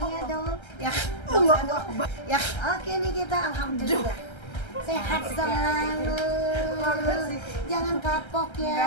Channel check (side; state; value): right; late; 1.3 ms